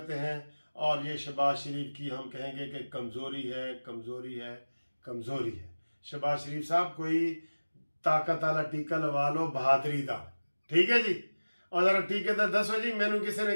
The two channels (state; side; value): inverted; both; correlation -1.00